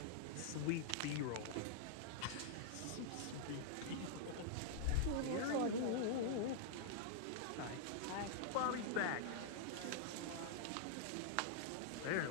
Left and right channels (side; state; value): both; different; correlation -0.01